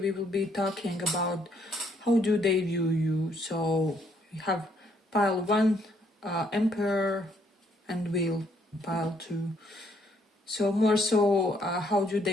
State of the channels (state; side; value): normal; both; correlation 0.69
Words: will be talking about how do they view you. So we have pile 1, Emperor, and Wheel, pile 2. So more so, how do